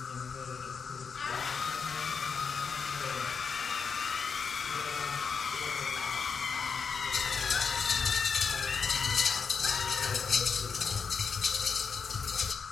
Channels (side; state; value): right; quieter; 5.7 dB